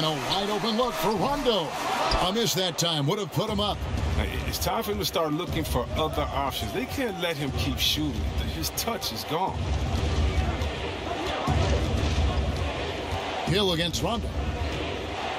a wide open look for Rondo. A miss that time would have put him up. It's time for him to start looking for other options. They can't let him keep shooting. His touch is gone. Hill against Rondo.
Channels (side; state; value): both; identical; correlation 1.00